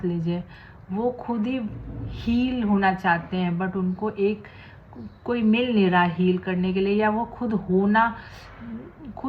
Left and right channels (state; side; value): identical; both; correlation 1.00